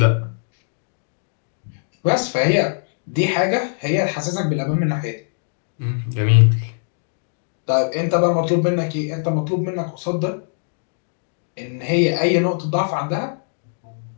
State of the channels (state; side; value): silent; right; digital silence